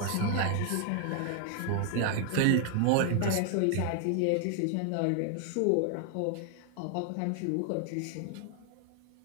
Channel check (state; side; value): different; both; correlation 0.00